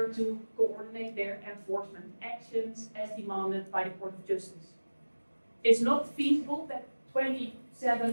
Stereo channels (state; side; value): inverted; both; correlation -1.00